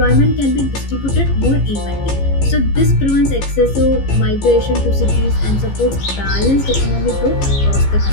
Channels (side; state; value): right; late; 15 ms